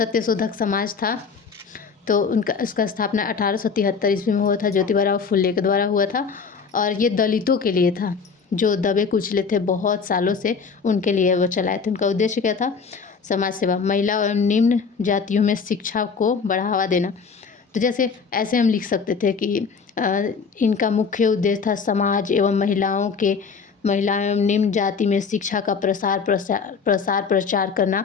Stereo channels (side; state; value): right; quieter; 5.5 dB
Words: समाज था तो उनका उसका स्थापना 1873 ईस्वी में हुआ था, ज्योतिबा फुले के द्वारा हुआ था, और ये दलितों के लिए था जो दबे कुचले थे बहुत सालों से, उनके लिए वो चलाए थे। उनका उद्देश्य क्या था, समाज सेवा, महिला और निम्न जातियों में शिक्षा को बढ़ावा देना। तो जैसे ऐसे हम लिख सकते थे कि इनका मुख्य उद्देश्य था समाज एवं महिलाओं एवं निम्न जाति में शिक्षा का प्रचार करना।